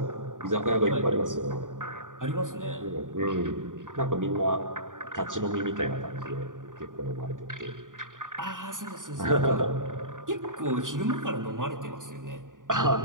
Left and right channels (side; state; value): left; late; 0.88 ms